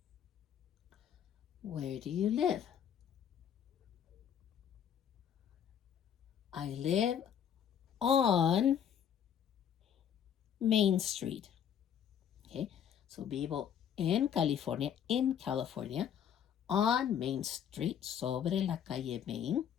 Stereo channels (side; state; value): right; quieter; 8.9 dB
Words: Where do you live? I live on Main Street. Okay, so vivo en California, on Main Street, sobre la calle Main.